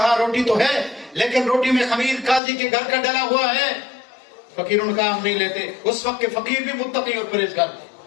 روٹی تو ہے لیکن روٹی میں خمیر قاضی کے گھر کا ڈلا ہوا ہے۔ فقیروں نے کہا ہم نہیں لیتے۔ اس وقت کے فقیر بھی متقی اور پرہیزگار تھے،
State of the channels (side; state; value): right; drops out; at 2.4 s